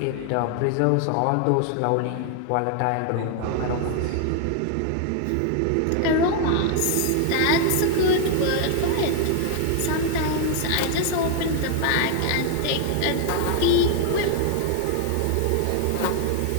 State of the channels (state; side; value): different; both; correlation 0.00